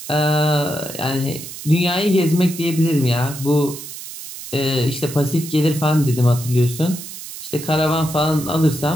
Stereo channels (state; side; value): noise; right; hiss, 12 dB below the sound